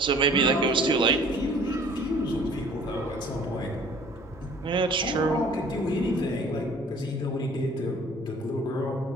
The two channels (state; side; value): normal; both; correlation 0.52